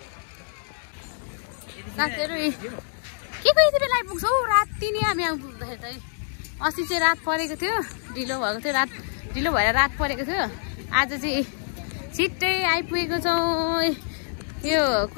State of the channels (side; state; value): right; silent; digital silence